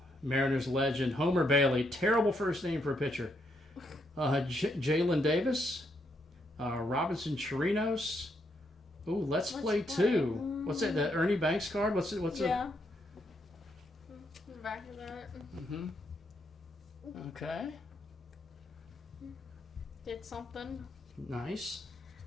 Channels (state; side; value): normal; both; correlation 0.77